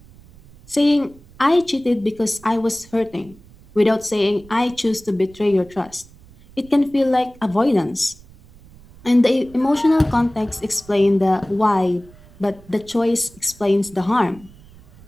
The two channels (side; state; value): right; noise; rumble, 24 dB below the sound